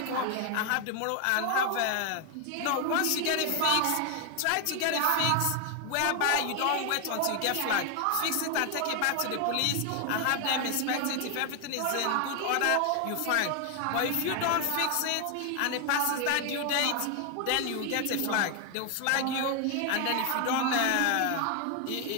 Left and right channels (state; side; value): different; both; correlation 0.01